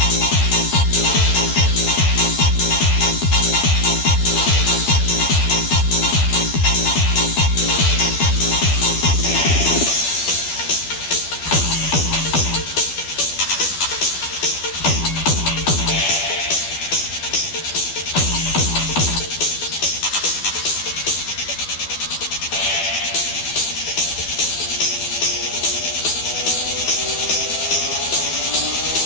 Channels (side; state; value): right; late; 12 ms